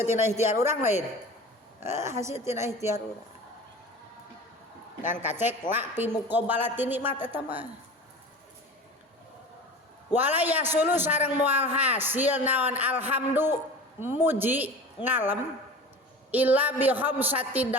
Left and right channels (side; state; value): both; normal; correlation 0.36